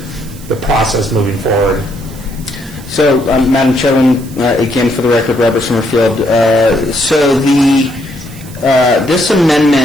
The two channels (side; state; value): right; noise; hiss, 20 dB below the sound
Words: process moving forward. So, Madam Chairman, again, for the record, Robert Summerfield. So this